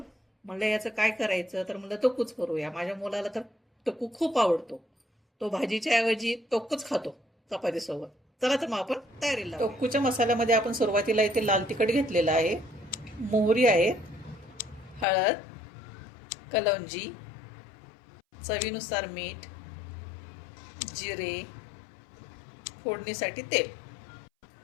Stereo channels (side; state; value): right; drops out; at 15.1 s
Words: म्हणलं याचं काय करायचं, तर म्हणलं तोक्कूच करूया. माझ्या मुलाला तर तोक्कू खूप आवडतो. तो भाजीच्या ऐवजी तोक्कूच खातो चपातीसोबत. चला तर मग आपण तयारीला. तोक्कूच्या मसाल्यामध्ये आपण सुरुवातीला इथे लाल तिखट घेतलेलं आहे, मोहरी आहे, हळद, कलौंजी, चवीनुसार मीठ, जिरे, फोडणीसाठी तेल.